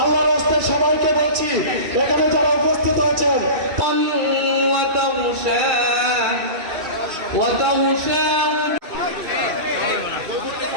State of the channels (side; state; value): left; late; 2.6 ms